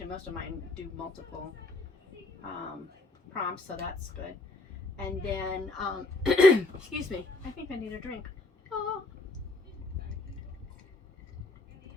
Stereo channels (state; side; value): quieter; right; 3.0 dB